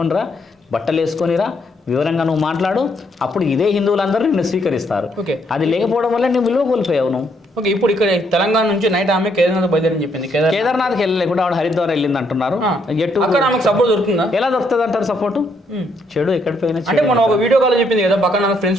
బట్టలు వేసుకొనిరా, వివరంగా నువ్వు మాట్లాడు, అప్పుడు ఇదే హిందువులందరూ నిన్ను స్వీకరిస్తారు. అది లేకపోవడం వల్ల నువ్వు విలువ కోల్పోయావు నువ్వు. ఓకే, ఇప్పుడు ఇక్కడ తెలంగాణ నుంచి నైట్ ఆమె కేదార్నాథ్ బయలుదేరని చెప్పింది. కేదార్నాథ్కి వెళ్ళలేకుండా ఆవిడ హరిద్వార్ వెళ్ళింది అంటున్నారు. సపోర్ట్ దొరుకుతుందా? ఎలా దొరుకుతుంది అంటారు సపోర్ట్? చెడు ఎక్కడ పోయినా అంటే మనం ఒక వీడియో కాల్ చెప్పింది కదా, పక్కన నా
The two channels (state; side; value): normal; both; correlation 0.72